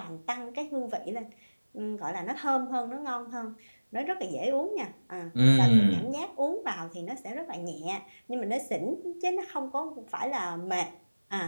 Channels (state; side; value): inverted; both; correlation -1.00